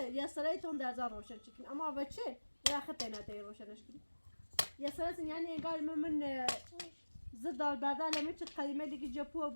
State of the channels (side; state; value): both; inverted; correlation -1.00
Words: يا سريتون ده زار روشن شكل اما بتشي ولا خطينا تي روشن شكل يا سرت يعني قال من زد البدل لما تقيمه اللي جابوه